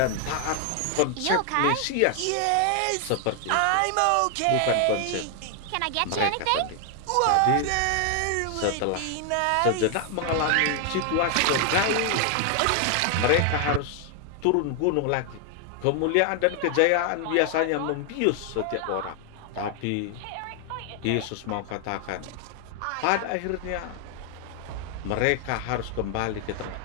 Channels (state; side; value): different; both; correlation 0.00